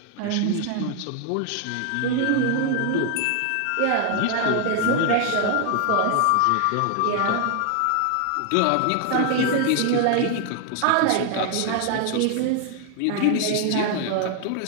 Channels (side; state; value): both; different; correlation 0.00